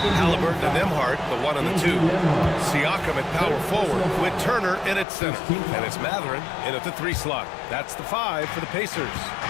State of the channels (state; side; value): drops out; right; at 5.1 s